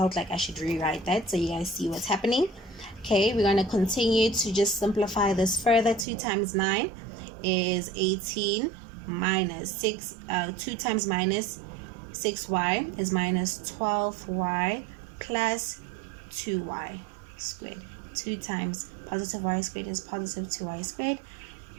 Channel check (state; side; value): drops out; left; at 6.1 s